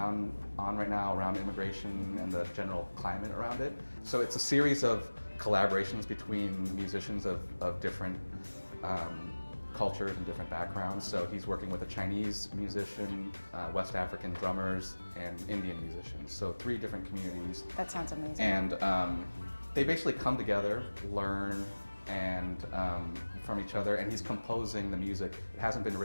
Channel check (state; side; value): inverted; both; correlation -1.00